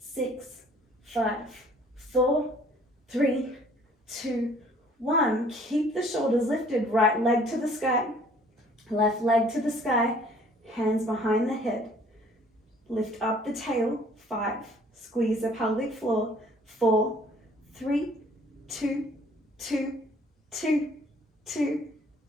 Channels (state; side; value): normal; both; correlation 0.56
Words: 5, 4, 3, 2, 1. Keep the shoulders lifted, right leg to the sky, left leg to the sky, hands behind the head. Lift up the tail, 5, squeeze the pelvic floor, 4, 3, 2, 2, 2, 2,